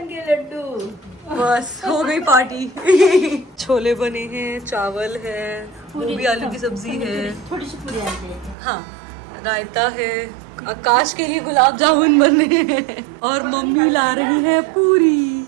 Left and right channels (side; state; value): left; drops out; at 8.6 s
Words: के लड्डू. बस हो गई पार्टी. छोले बने हैं, चावल है, गोभी आलू की सब्जी है, थोड़ी सी पूरी आते हैं. हाँ रायता है. आकाश के लिए गुलाब जामुन बने हैं और मम्मी ला रही है पूरी.